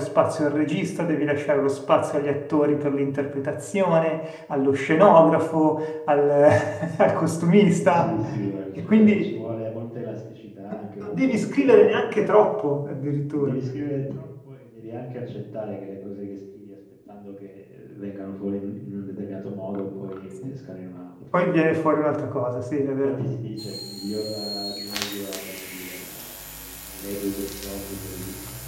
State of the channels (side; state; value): both; identical; correlation 1.00